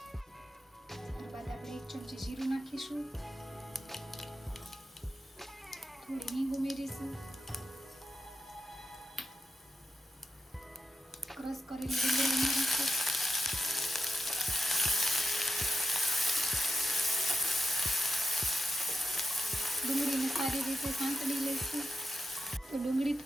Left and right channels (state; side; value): normal; both; correlation 0.91